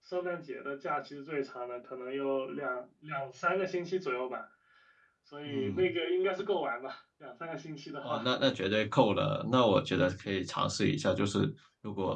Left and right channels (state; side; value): identical; both; correlation 1.00